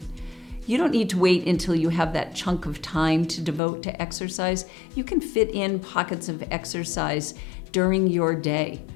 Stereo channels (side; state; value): right; drops out; at 3.6 s